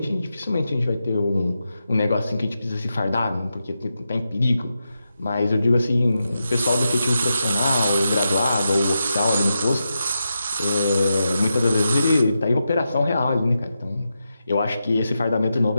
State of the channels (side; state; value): both; inverted; correlation -0.88